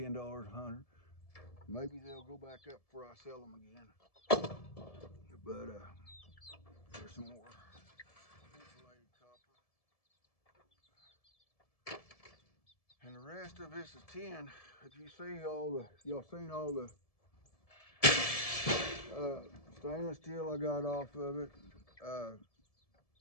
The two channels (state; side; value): late; right; 1.7 ms